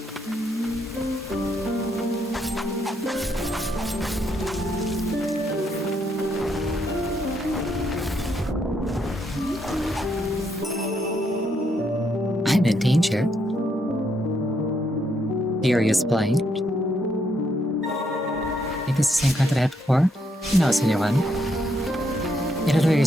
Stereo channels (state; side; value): normal; both; correlation 0.76